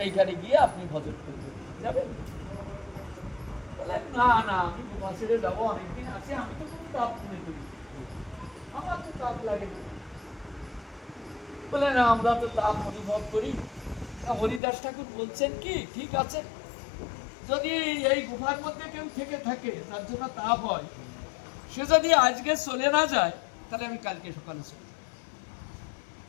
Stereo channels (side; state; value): right; drops out; at 14.6 s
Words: গিয়ে আপনি ভজন করবেন, যাবেন? না না, আমি গুফা ছেড়ে যাবো, অনেকদিন আছে, আমি তো কোনো তাপ মনে করি, আমার তো তাপ লাগে না। বলে না, আমরা তো তাপ অনুভব করি। হরিদাস ঠাকুর বলছেন কি, ঠিক আছে, যদি এই গুফার মধ্যে কেউ থেকে থাকে তার জন্য তাপ হয়, সে যদি আজকে চলে না যায় তাহলে আমি কালকে সকালে চলে যাব।